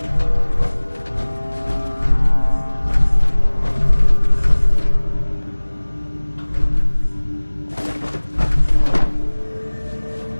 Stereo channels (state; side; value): inverted; both; correlation -1.00